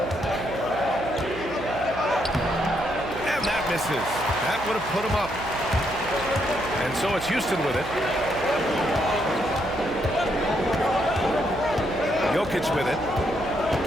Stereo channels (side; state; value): right; noise; hum, 12 dB below the sound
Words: And that misses. That would have put him up. And so it's Houston with it. Jokic with it.